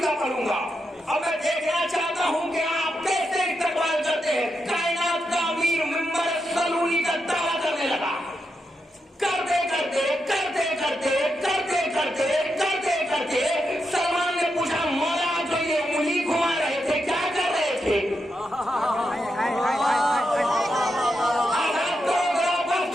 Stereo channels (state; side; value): normal; both; correlation 0.85